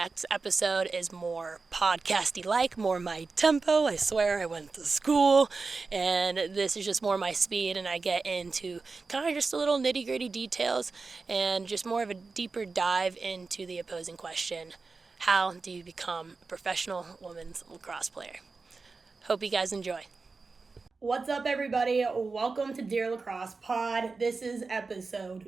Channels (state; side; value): quieter; left; 4.2 dB